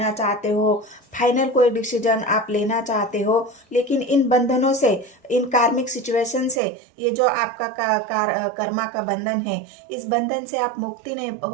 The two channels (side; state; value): left; drops out; at 6.6 s